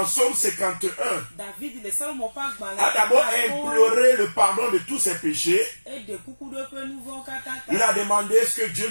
Psaume 51 a d'abord imploré le pardon de tous ses péchés. Il a demandé est-ce que Dieu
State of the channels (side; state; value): both; inverted; correlation -1.00